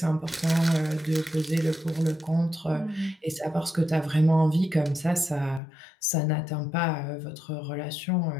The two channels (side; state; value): right; drops out; at 5.6 s